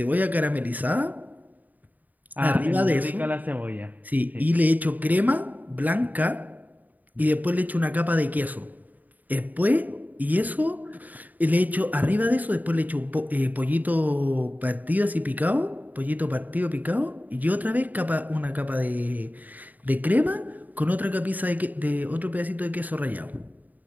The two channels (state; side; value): late; left; 0.081 ms